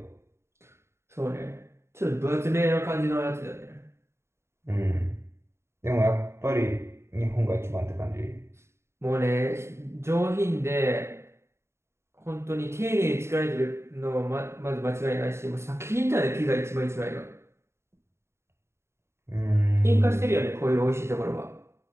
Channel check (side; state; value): left; late; 0.13 ms